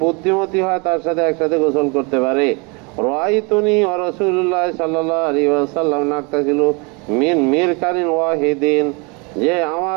বুদ্ধিমতী হয়, তার সাথে একসাথে গোসল করতে পারে। রাআইতুনি ওয়া রাসূলুল্লাহ সাল্লাল্লাহু আলাইহি ওয়াসাল্লাম নাকতাসিলু মিন মিরকানিন ওয়াহিদিন, যে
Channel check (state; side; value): quieter; left; 30.6 dB